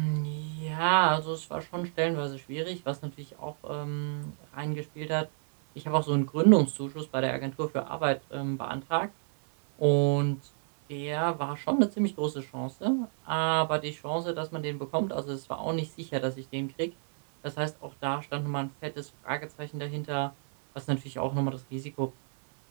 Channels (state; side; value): silent; left; 58 dB below the other